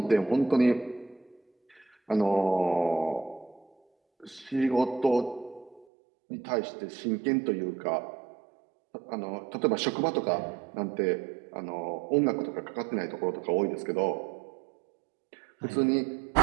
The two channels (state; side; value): drops out; left; at 5.9 s